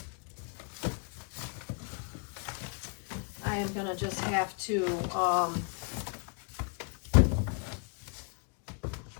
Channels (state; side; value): quieter; right; 39.5 dB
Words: I am going to just have to, I'm